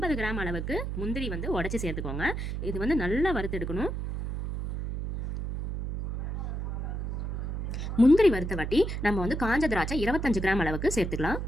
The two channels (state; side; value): noise; right; hum, 4 dB below the sound